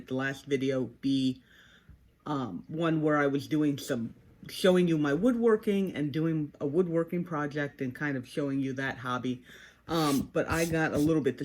the last video, be one where I was doing showing you my woodworking and doing a woodworking project and kind of showing you that hobby. But I got a little bit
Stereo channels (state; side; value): identical; both; correlation 1.00